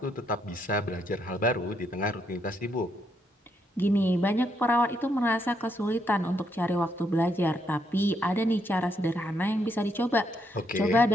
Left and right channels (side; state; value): both; normal; correlation 0.76